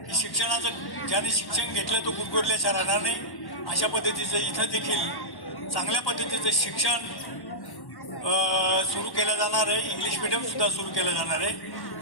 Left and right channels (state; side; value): late; right; 1.1 ms